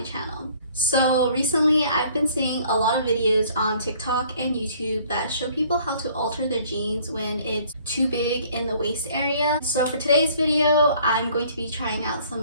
channel. So recently I've been seeing a lot of videos on TikTok and YouTube that show people how to alter their jeans when it's too big in the waist area. So for today's video, I'm going to be trying out some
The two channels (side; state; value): both; inverted; correlation -0.57